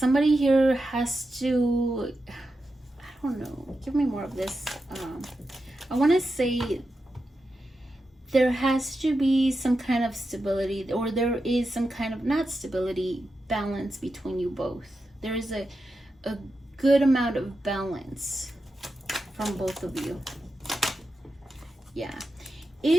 here has to, I don't know, give me more of this. I want to say there has to be some kind of stability, or there is some kind of, not stability, balance between you both. There is a good amount of balance from both of you. Yeah.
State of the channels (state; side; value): normal; both; correlation 0.89